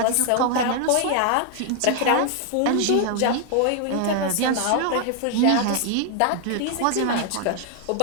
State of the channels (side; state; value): both; different; correlation 0.00